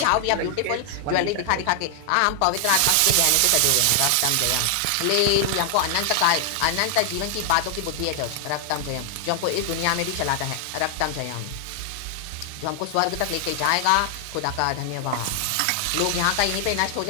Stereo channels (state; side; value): different; both; correlation 0.00